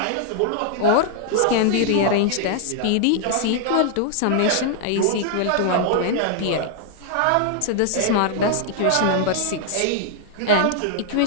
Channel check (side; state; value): both; different; correlation -0.01